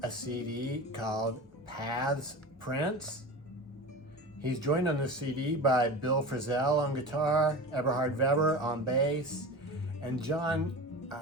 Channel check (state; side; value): normal; both; correlation 0.31